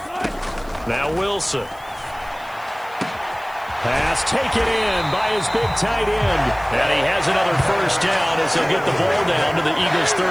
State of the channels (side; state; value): left; noise; hiss, 25 dB below the sound